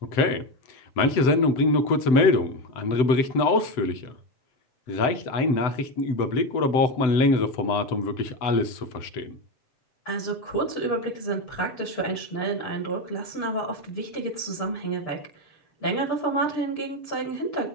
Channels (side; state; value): right; late; 7.9 ms